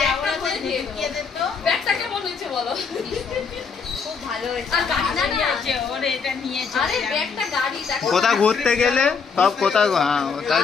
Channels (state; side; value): quieter; right; 5.6 dB